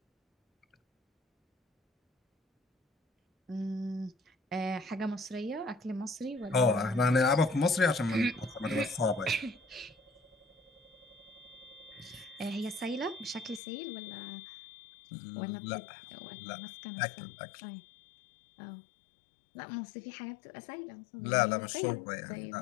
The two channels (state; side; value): drops out; right; at 13.6 s